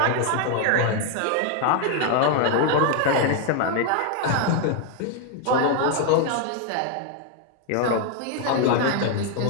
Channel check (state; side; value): different; both; correlation 0.00